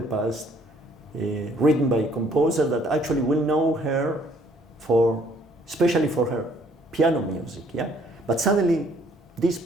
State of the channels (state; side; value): normal; both; correlation 0.62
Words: past, written by a composer that actually will know her especially for her piano music. Yeah, but suddenly this